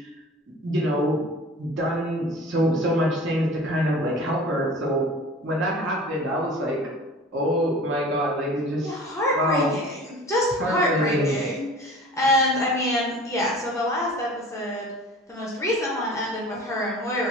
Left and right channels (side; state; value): both; normal; correlation 0.42